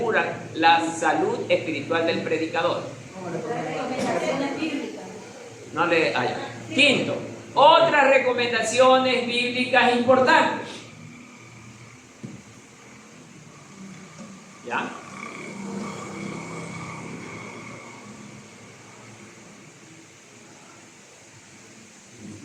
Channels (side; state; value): both; identical; correlation 1.00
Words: la salud espiritual del predicador. No le hay. Quinto, otras recomendaciones bíblicas importantes. ¿Ya?